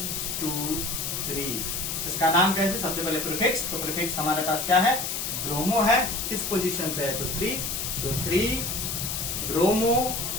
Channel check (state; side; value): noise; left; hiss, 3 dB below the sound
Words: 2 3। इसका नाम कैसे? सबसे पहले प्रीफिक्स। तो प्रीफिक्स हमारे पास क्या है? ब्रोमो है। किस पोजीशन पे है? तो 3। तो 3 ब्रोमो